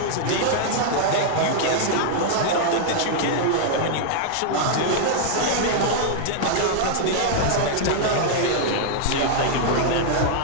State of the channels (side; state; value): both; different; correlation -0.01